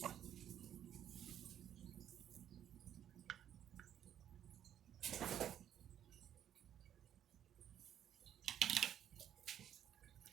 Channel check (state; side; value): quieter; left; 10.2 dB